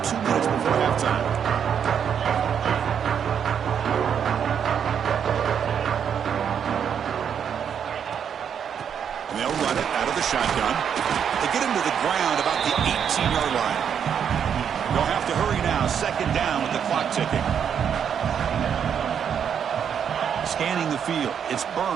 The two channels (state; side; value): quieter; left; 8.0 dB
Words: 2 minutes before halftime. And they'll run it out of the shotgun. They get him to the ground about the 18-yard line. They'll have to hurry now. Second down with the clock ticking. Scanning the field. It's